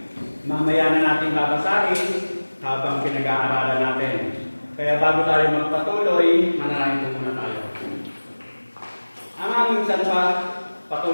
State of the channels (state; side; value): inverted; both; correlation -1.00